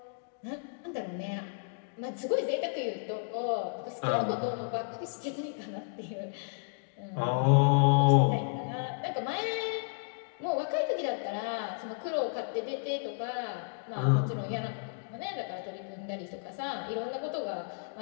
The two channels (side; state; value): right; silent; digital silence